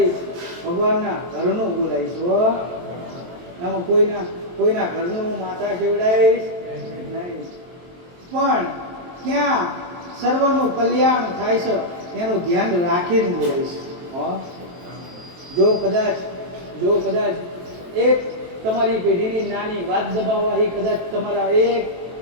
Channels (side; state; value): left; late; 23 ms